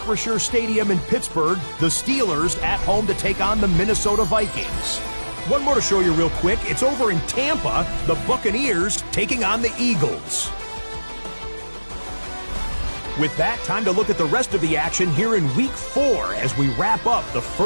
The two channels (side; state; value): both; inverted; correlation -1.00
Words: Stadium in Pittsburgh, the Steelers at home to take on the Minnesota Vikings. One more to show you real quick. It's over in Tampa, the Buccaneers taking on the Eagles. With that, time to look at the rest of the action here in Week 4 as we wrap up the